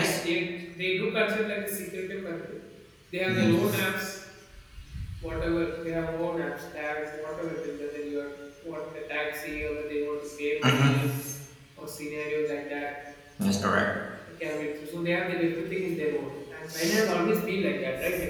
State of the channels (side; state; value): both; identical; correlation 1.00